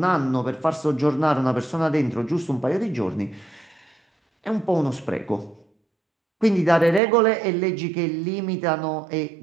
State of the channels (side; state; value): left; drops out; at 7.0 s